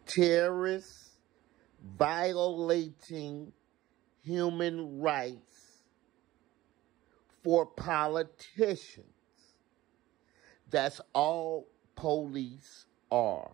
Terrorists violating human rights for politicians. That's all police are.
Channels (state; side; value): quieter; left; 16.6 dB